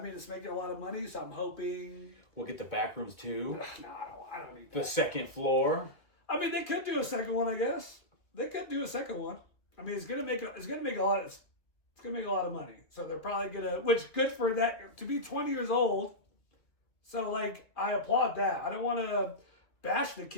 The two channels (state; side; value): late; right; 2.3 ms